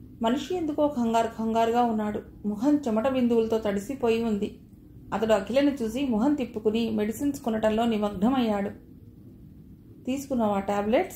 మనిషి ఎందుకో కంగారుగా ఉన్నాడు. ముఖం చెమట బిందువులతో తడిసిపోయి ఉంది. అతడు అఖిలను చూసి మొహం తిప్పుకుని మెడిసిన్స్ కొనటంలో నిమగ్నమయ్యాడు. తీసుకున్నావా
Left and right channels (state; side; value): identical; both; correlation 1.00